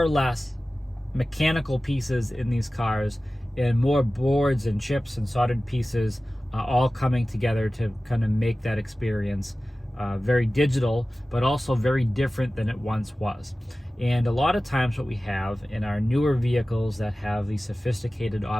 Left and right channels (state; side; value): normal; both; correlation 0.96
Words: less mechanical pieces in these cars and more boards and chips and soldered pieces all coming together to kind of make that experience very digital, but also very different than it once was. And a lot of times what we have in our newer vehicles that have these sophisticated